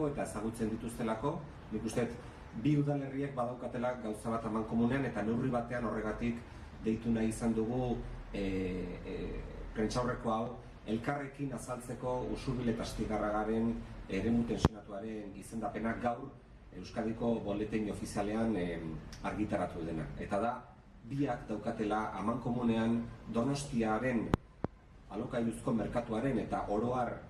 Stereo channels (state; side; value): identical; both; correlation 1.00